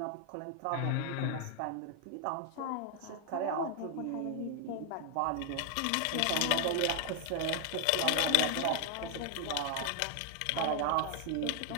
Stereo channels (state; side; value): different; both; correlation 0.00